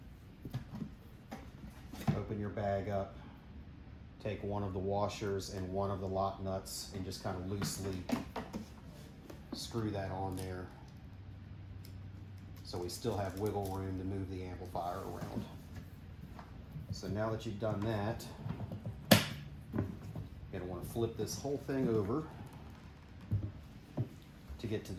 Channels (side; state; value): both; identical; correlation 1.00